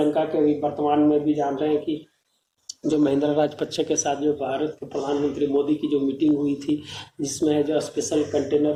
के भी वर्तमान में भी जान रहे हैं कि जो महेंद्र राजपक्षे के साथ जो भारत के प्रधानमंत्री मोदी की जो मीटिंग हुई थी, जिसमें जो स्पेशल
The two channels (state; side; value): identical; both; correlation 1.00